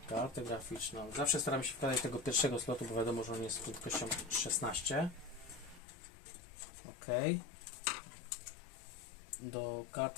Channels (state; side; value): drops out; right; at 5.8 s